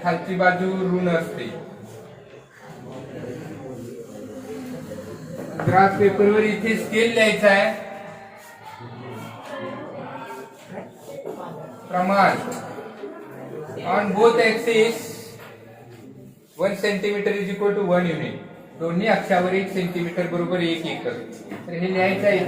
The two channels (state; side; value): identical; both; correlation 1.00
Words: खालची बाजू ऋण असते. ग्राफ पेपरवर इथे स्केल लिहायचा आहे. प्रमाण on both axis 1 centimetre is equal to 1 unit. दोन्ही अक्षावर 1 सेंटीमीटर बरोबर 1 एकर. तर हे लिहायचं आहे